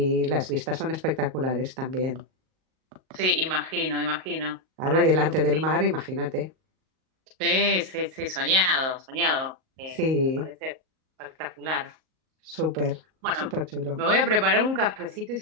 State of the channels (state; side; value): late; left; 38 ms